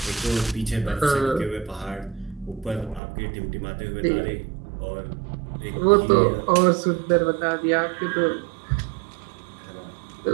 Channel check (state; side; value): drops out; left; at 3.0 s